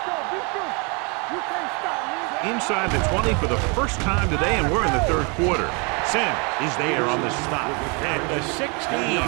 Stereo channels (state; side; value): quieter; left; 32.3 dB